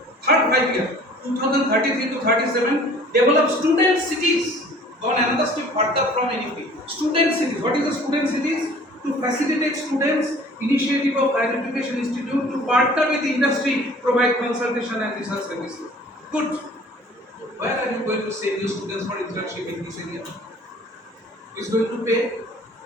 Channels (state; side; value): normal; both; correlation 0.50